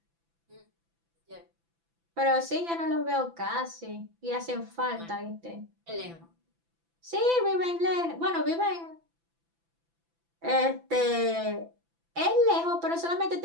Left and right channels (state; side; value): late; left; 5.9 ms